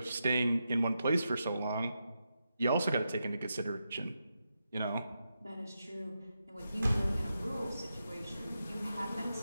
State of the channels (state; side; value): inverted; both; correlation -0.87